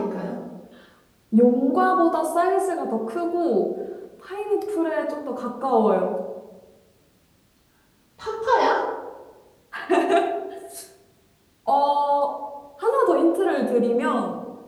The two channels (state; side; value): identical; both; correlation 1.00